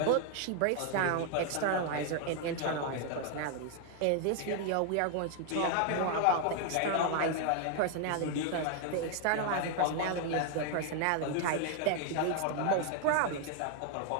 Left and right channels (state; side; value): different; both; correlation 0.00